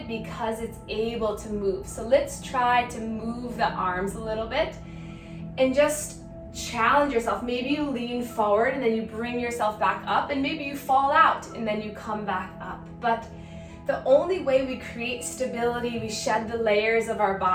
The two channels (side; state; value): both; identical; correlation 1.00